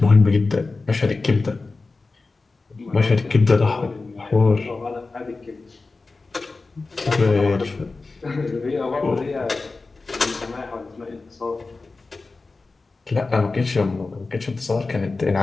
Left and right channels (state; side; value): quieter; right; 3.7 dB